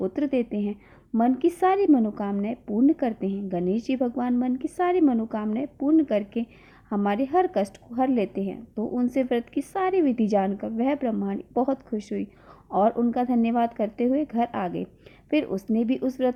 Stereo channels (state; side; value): identical; both; correlation 1.00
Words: देते हैं, मन की सारी मनोकामनाएं पूर्ण करते हैं। गणेश जी भगवान मन की सारी मनोकामनाएं पूर्ण करके हमारे हर कष्ट को हर लेते हैं। तो उनसे व्रत की सारी विधि जानकर वह ब्रह्माणी बहुत खुश हुई और उनका धन्यवाद करते हुए घर आ गई। फिर उसने भी उस